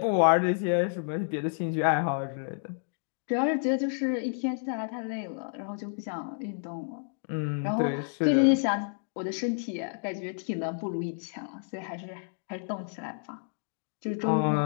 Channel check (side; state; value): right; silent; digital silence